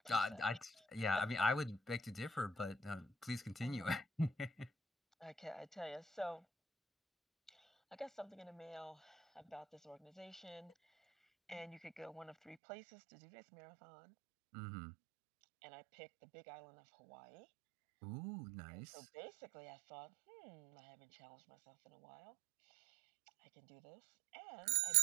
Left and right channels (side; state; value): left; drops out; at 12.6 s